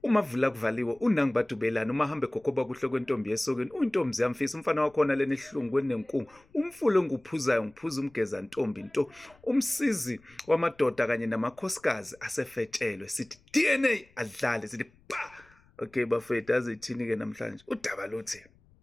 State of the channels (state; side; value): noise; left; rumble, 30 dB below the sound